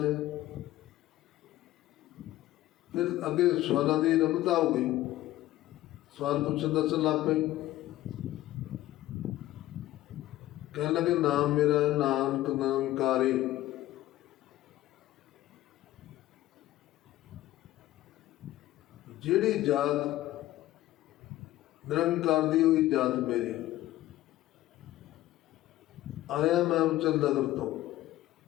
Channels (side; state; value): right; quieter; 15.4 dB